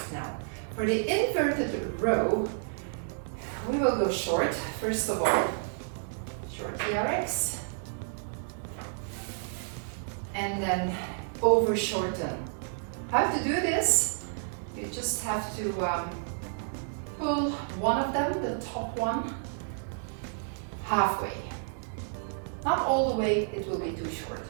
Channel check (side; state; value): left; silent; digital silence